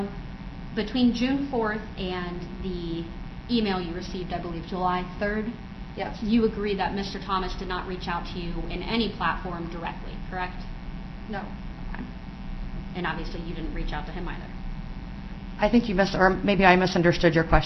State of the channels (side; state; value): both; identical; correlation 1.00